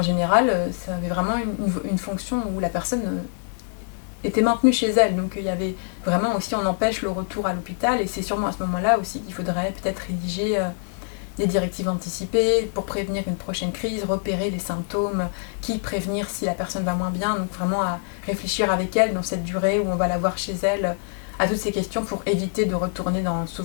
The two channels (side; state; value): right; silent; 62 dB below the other